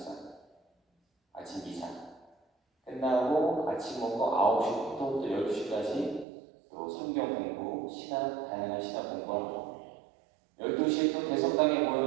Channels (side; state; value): left; drops out; at 6.2 s